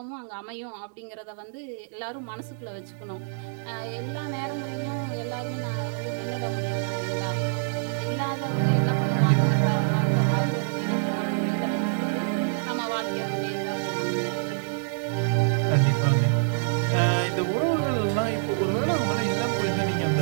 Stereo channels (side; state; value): left; silent; digital silence